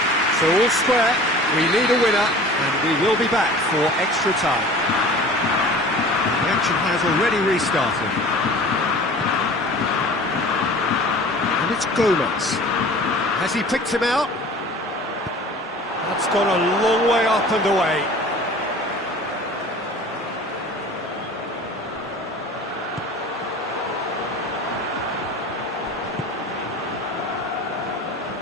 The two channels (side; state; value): both; normal; correlation 0.42